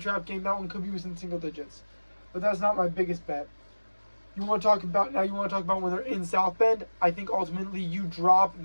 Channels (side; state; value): both; inverted; correlation -1.00